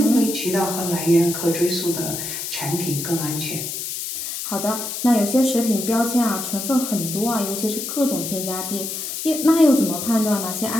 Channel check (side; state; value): left; noise; hiss, 5 dB below the sound